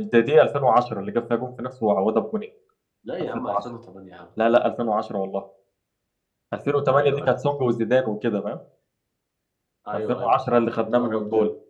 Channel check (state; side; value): identical; both; correlation 1.00